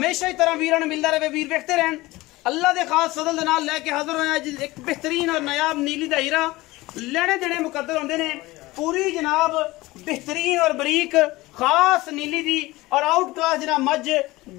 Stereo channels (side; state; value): right; quieter; 19.7 dB